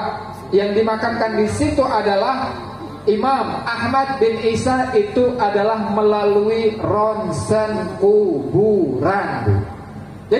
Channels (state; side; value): identical; both; correlation 1.00